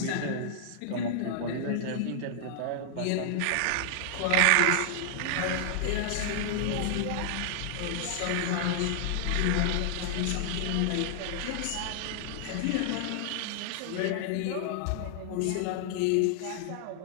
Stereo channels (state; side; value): different; both; correlation -0.01